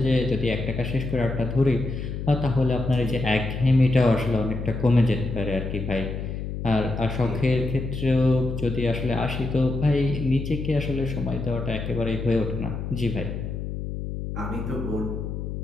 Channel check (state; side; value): noise; left; hum, 5 dB below the sound